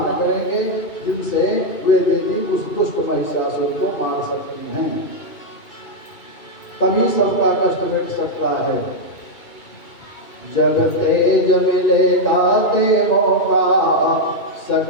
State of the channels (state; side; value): late; right; 2.7 ms